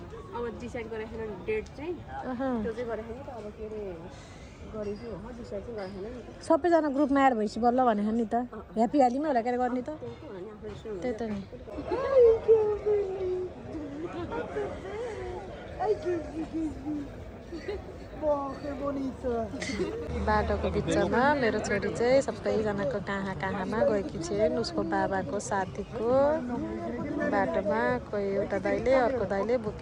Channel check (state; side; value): identical; both; correlation 1.00